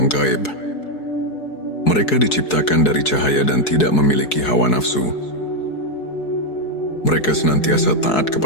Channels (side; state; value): right; late; 4.7 ms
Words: gaib. Mereka diciptakan dari cahaya dan tidak memiliki hawa nafsu. Mereka senantiasa taat